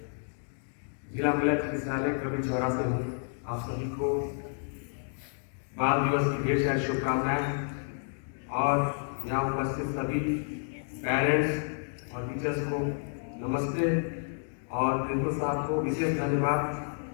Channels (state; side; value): silent; right; digital silence